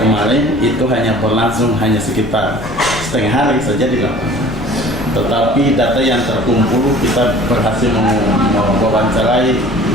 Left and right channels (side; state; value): left; noise; rumble, 12 dB below the sound